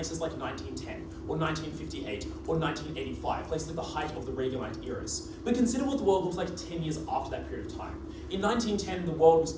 like 1910, or 1958, or 1985, places at the height of the Reaganite eras. But consider what the world looked like 10 years after that period of time. In 1910, the world was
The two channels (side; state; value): both; identical; correlation 1.00